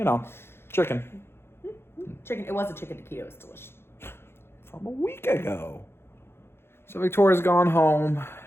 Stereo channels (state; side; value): late; right; 0.12 ms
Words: chicken. Chicken. It was a chicken taquito. It was delicious. From a week ago. So Victoria's gone home,